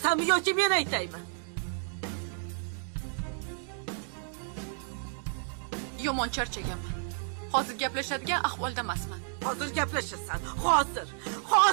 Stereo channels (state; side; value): silent; left; 57 dB below the other